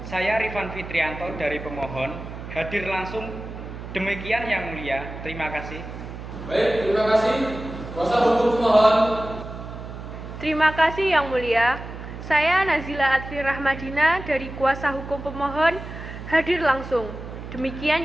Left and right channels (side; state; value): right; noise; hum, 11 dB below the sound